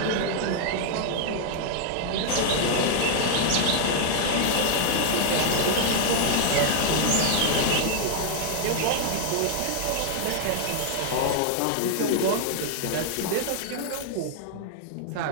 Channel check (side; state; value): both; different; correlation -0.01